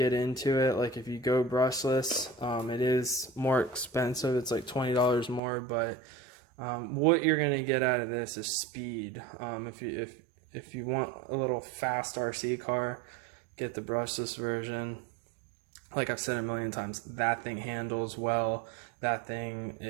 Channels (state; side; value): drops out; left; at 5.4 s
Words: into it. Like if you go brushless, it is more expensive. It's like $20 more, but what you're gonna get out of this is speed. If you want a little fast RC car, get the brushless version. Like I've said a million times, that thing handles well. That thing